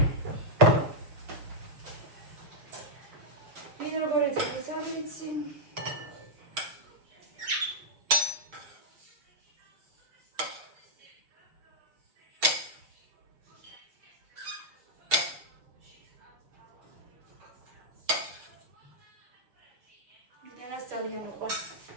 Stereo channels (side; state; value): left; late; 6.6 ms